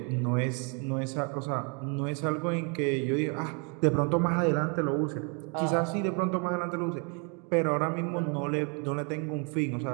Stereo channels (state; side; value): quieter; left; 34.7 dB